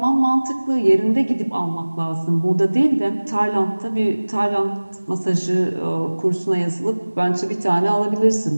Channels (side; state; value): both; inverted; correlation -1.00